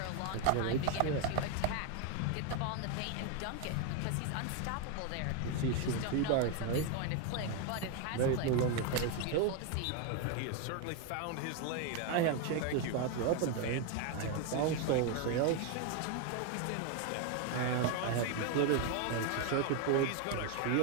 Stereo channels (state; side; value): different; both; correlation 0.01